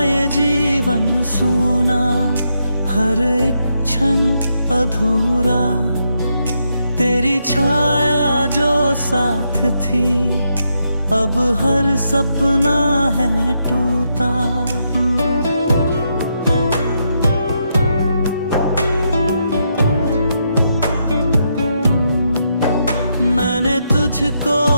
ये जीवन सूना, हर एक क्षण अधूरा। तेरी छाया जो साथ थी, अब हर सपना है टूटा। मैंने तुझको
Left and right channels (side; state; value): both; inverted; correlation -0.80